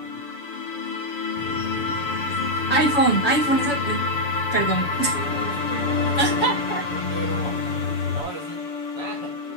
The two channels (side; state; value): right; late; 7.0 ms